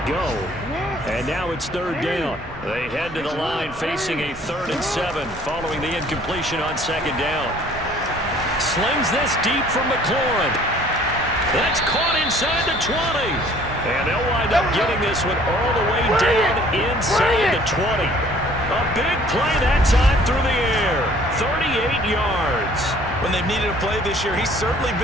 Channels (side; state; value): both; normal; correlation 0.55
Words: go. And now it's third down. They head to the line facing a 3rd and 7 following the incompletion on second down. Slings this deep from McLaurin. That's caught inside the 20. And they'll wind up getting this one all the way down inside the 20. A big play that time through the air. 38 yards. When they've needed a play this year, he's certainly